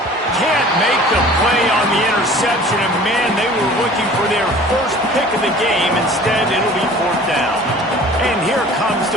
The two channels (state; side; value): normal; both; correlation 0.46